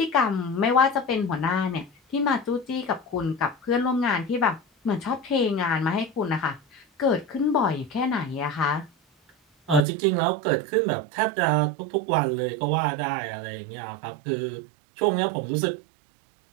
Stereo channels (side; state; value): left; drops out; at 9.8 s